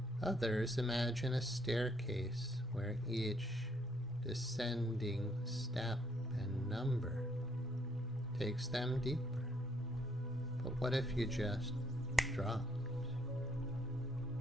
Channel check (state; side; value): normal; both; correlation 0.69